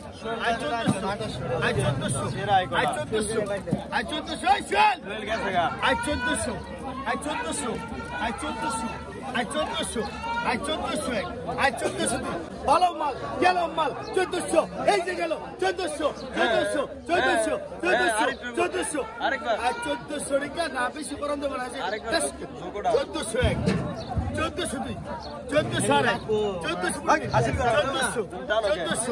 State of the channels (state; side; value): identical; both; correlation 1.00